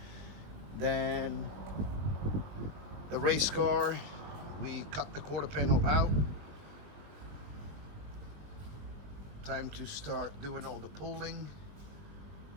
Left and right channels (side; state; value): left; late; 20 ms